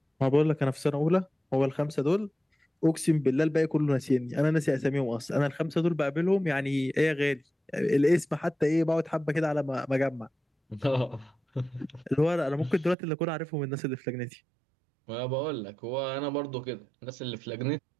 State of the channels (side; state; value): left; drops out; at 13.0 s